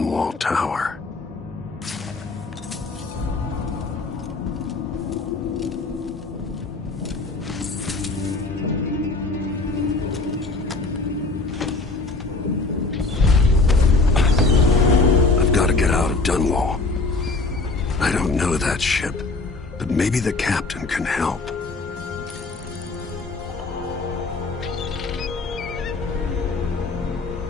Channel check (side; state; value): right; quieter; 3.5 dB